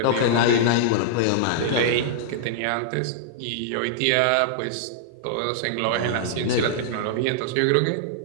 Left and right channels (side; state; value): both; different; correlation -0.02